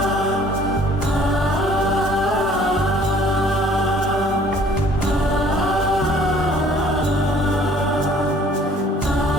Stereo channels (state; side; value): normal; both; correlation 0.55